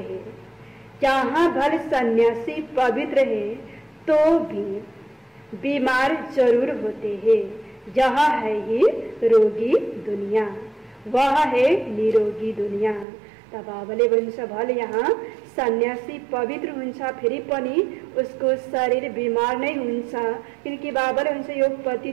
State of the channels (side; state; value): left; drops out; at 13.1 s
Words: यहाँ भले सन्यासी पवित्र है तो भी बीमार जरूर होते हैं। यह है ही रोगी दुनिया, वह है निरोगी दुनिया। तब बाबाले भन्छ भले यहाँ सन्यासी पवित्र हुन्छ फेरि पनि उसको शरीर बीमार नहीं हुन्छ, किनकि बाबाले भन्छ यो